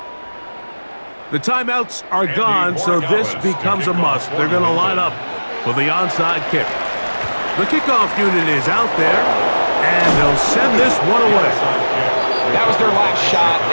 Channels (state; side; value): inverted; both; correlation -1.00